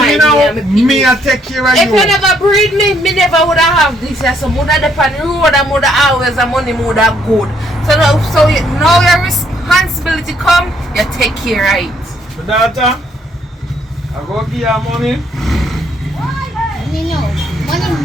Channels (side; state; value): both; normal; correlation 0.69